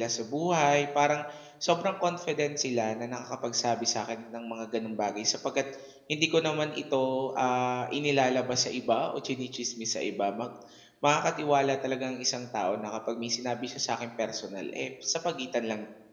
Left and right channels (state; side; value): identical; both; correlation 1.00